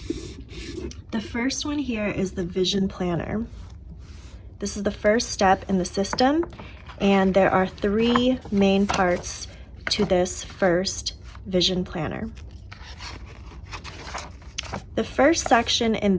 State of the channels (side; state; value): both; identical; correlation 1.00